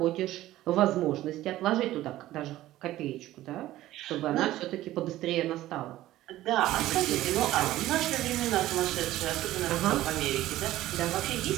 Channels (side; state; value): left; quieter; 15.1 dB